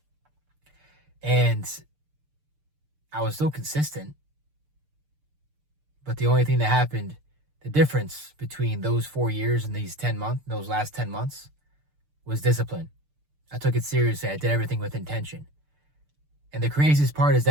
And I was still consistent. But the only thing that happened, the difference between those 4 years and those last 10 months, was discipline. I took it seriously. I did everything with intention. And the craziest part is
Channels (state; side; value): late; left; 6.7 ms